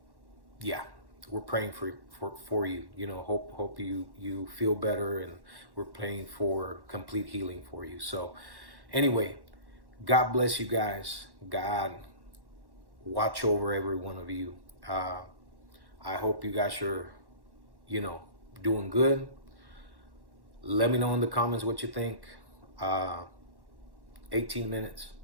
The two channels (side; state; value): left; late; 1.1 ms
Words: We're praying for you. You know, hope you feel better, and we're praying for complete healing for you. So anyway, God bless you guys. God watch over every one of you. I hope you guys are, you know, doing good. Let me know in the comments what you think. 18 minutes.